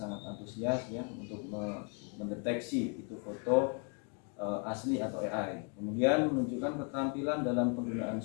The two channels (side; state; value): right; quieter; 37.3 dB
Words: antusias ya untuk mendeteksi itu foto asli atau AI. Kemudian menunjukkan keterampilan dalam penggunaan